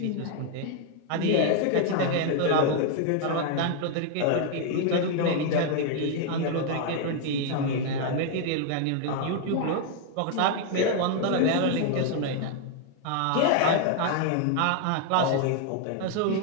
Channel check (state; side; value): different; both; correlation 0.00